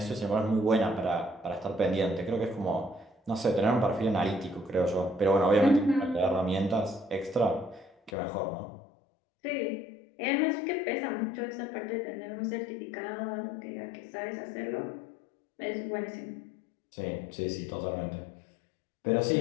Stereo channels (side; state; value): right; drops out; at 8.1 s